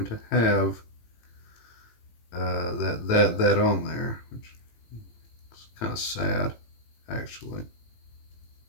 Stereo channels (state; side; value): late; right; 18 ms